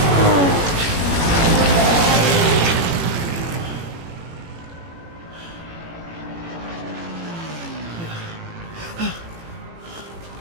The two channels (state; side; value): late; left; 18 ms